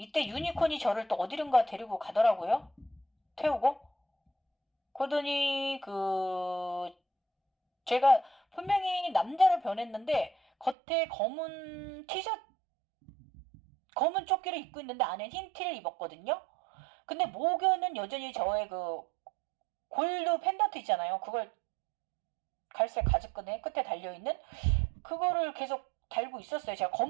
유니콘이 저를 또 어디론가 데리고 가더라고요. 태우고. 그러더니 제가 분명히 남자로 변했는데 겉에 검은 티셔츠 검은 조끼를 입고 있는데 안에 흰 티를 입었거든요. 근데 목에는 여전히 저의 골드 펜던트 있잖아요. 그걸 갈색 가죽끈에 끝에 달려있는 그거를 계속 달고 있었어요. 제가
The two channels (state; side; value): drops out; left; at 10.8 s